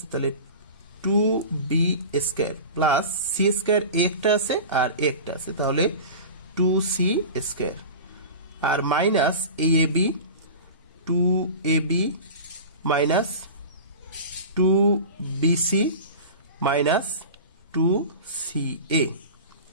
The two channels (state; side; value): inverted; both; correlation -0.33